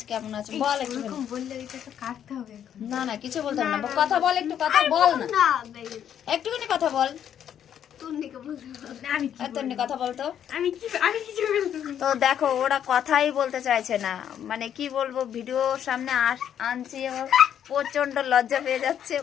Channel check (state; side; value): quieter; right; 9.5 dB